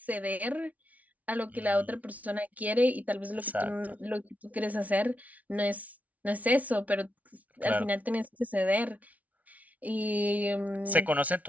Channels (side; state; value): left; late; 0.071 ms